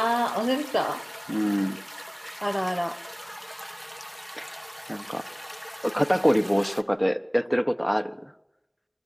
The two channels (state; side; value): identical; both; correlation 1.00